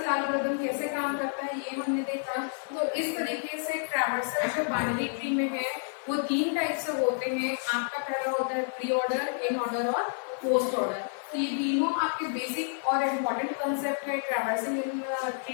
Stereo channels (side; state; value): right; silent; digital silence